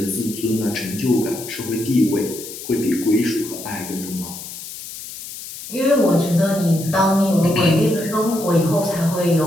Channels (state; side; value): noise; left; hiss, 12 dB below the sound